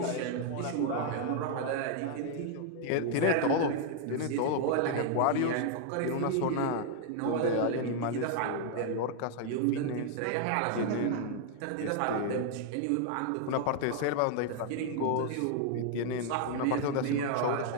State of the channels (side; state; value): both; different; correlation 0.00